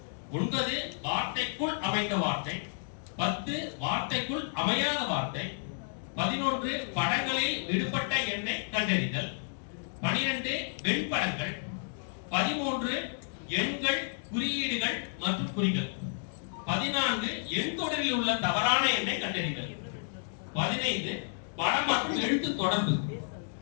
9 வார்த்தைக்குள் அமைந்த வார்த்தை, 10 வார்த்தைக்குள் அமையாத வார்த்தை, 11 படங்களில் விடுபட்ட எண்ணை கண்டறிதல், 12 வெண்படங்கள், 13 எண்கள், குறியீடுகள் மற்றும் குறிகள், 14 எண் தொடரில் உள்ள தவறான எண்ணை கண்டறிதல், 15 படம் மற்றும் எழுத்து தொடர்பு,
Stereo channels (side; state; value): right; silent; digital silence